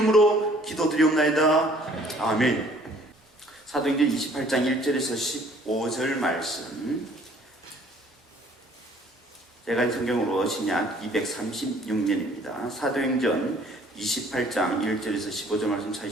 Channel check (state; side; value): normal; both; correlation 0.57